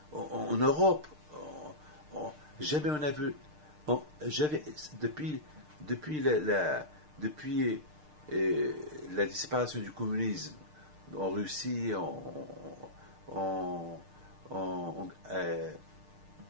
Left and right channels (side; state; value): left; late; 6.6 ms